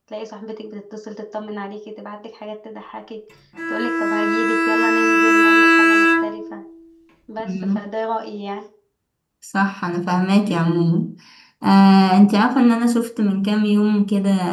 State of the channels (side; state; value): both; identical; correlation 1.00